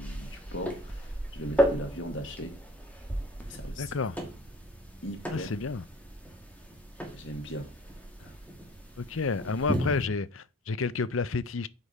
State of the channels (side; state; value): both; normal; correlation 0.48